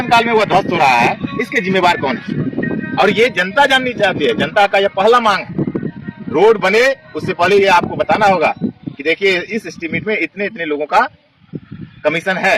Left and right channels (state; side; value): identical; both; correlation 1.00